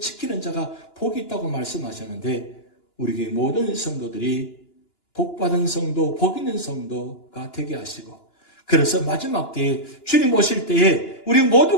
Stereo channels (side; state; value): right; late; 2.9 ms